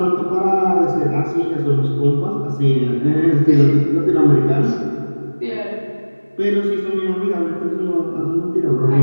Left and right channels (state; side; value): inverted; both; correlation -1.00